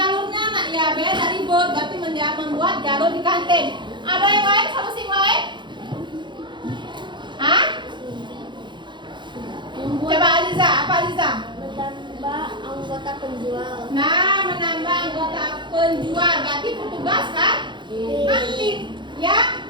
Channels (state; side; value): late; left; 0.23 ms